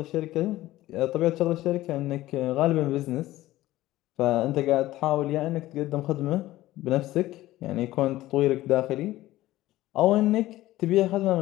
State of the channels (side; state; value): right; quieter; 16.1 dB